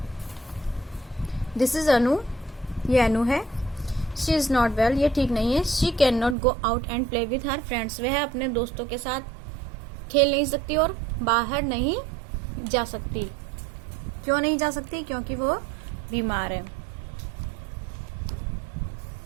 दिस इज अनु, ये अनु है। शी इज नॉट वेल, ये ठीक नहीं है। She can not go out and play with her friends, वह अपने दोस्तों के साथ खेल नहीं सकती और बाहर नहीं जा सकती। क्यों नहीं जा सकती? क्योंकि वो बीमार है।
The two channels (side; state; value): left; drops out; at 6.4 s